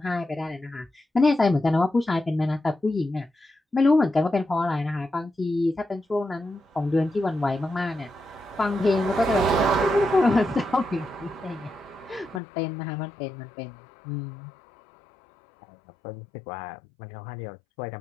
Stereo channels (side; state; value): right; drops out; at 12.4 s